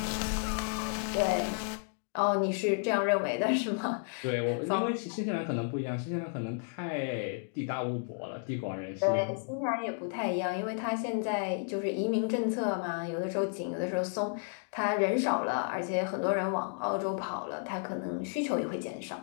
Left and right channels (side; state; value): right; silent; 56 dB below the other